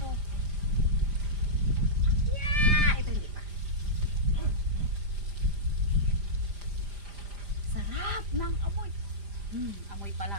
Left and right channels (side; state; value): left; late; 5.0 ms